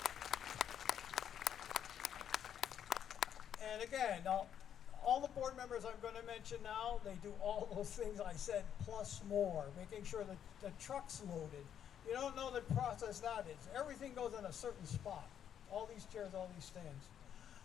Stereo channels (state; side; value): quieter; right; 9.2 dB